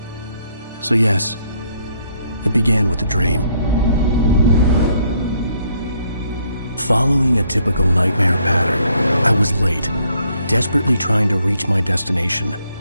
So yes, it began with a dream. Following a typical nightmare pattern, I was late, desperately trying to reach my destination,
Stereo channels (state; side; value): inverted; both; correlation -0.70